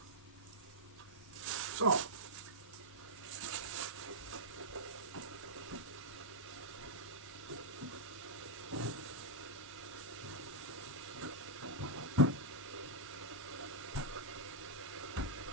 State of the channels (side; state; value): both; normal; correlation -0.08